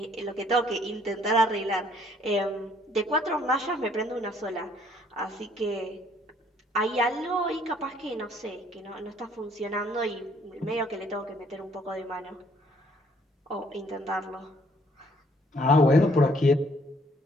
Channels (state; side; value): normal; both; correlation 0.63